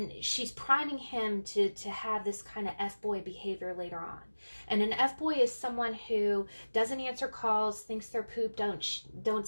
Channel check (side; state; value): both; inverted; correlation -1.00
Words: she's priming him to have this kind of F-boy behavior later on. And an F-boy is someone who doesn't answer calls, thinks their poop don't